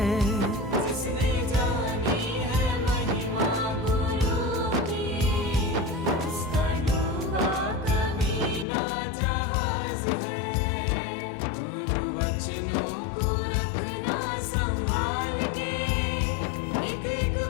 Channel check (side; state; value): right; drops out; at 8.7 s